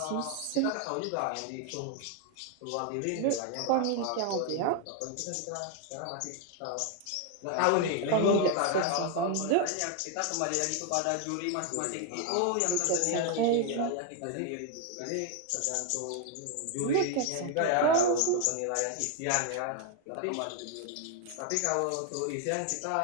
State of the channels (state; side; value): different; both; correlation 0.01